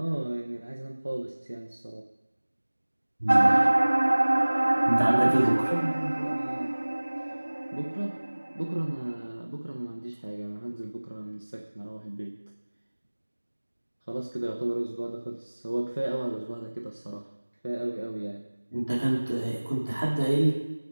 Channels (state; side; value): inverted; both; correlation -1.00